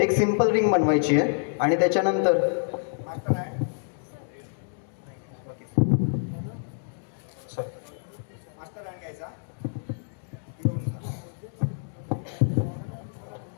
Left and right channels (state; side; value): silent; right; digital silence